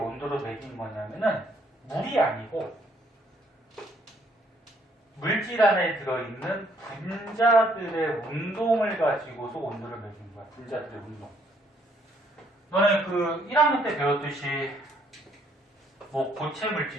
매긴 거냐면은 물이 아니고 물질 안에 들어있는 분자들의 운동을 가지고서 온도를 매긴 거야. 분자들의 운동. 너네 그 1학년 때 배웠듯이 뭐 고체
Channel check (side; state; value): both; normal; correlation 0.67